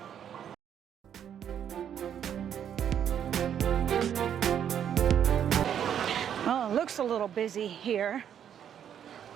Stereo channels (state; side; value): quieter; left; 9.2 dB